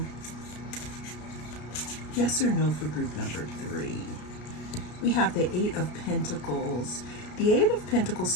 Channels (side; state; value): right; late; 33 ms